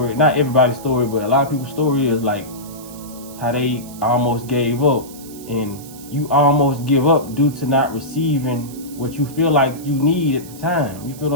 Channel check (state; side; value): noise; right; hiss, 18 dB below the sound